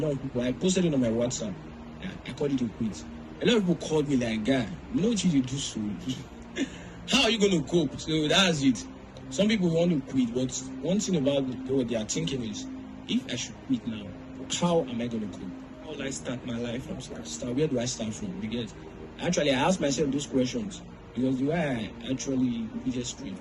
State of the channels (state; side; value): identical; both; correlation 1.00